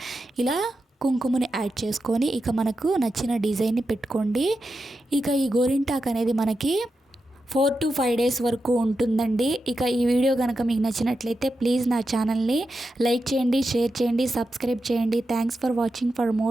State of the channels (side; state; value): both; normal; correlation 0.89